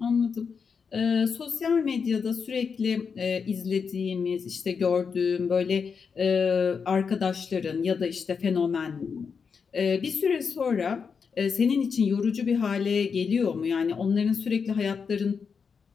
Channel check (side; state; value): right; quieter; 5.9 dB